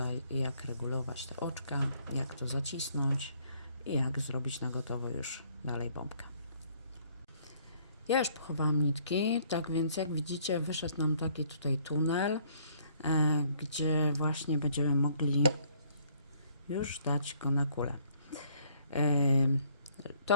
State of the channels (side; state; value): both; inverted; correlation -0.64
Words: jak regulować te oczka, jak to zacisnąć i jak zrobić na gotowo już dalej bombkę. Ja już pochowałam nitki, tak więc jak widzicie wyszedł nam taki tutaj tunel, gdzie właśnie będziemy mogli już dać go na kulę.